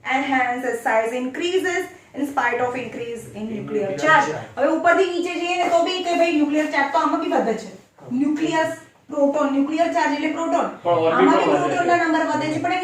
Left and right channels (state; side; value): identical; both; correlation 1.00